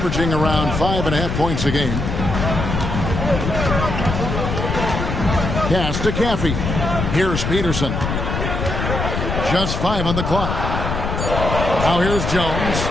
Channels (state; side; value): noise; left; rumble, 2 dB below the sound